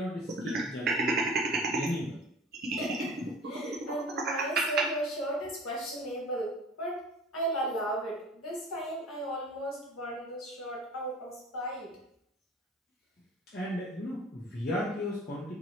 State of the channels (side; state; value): both; normal; correlation 0.43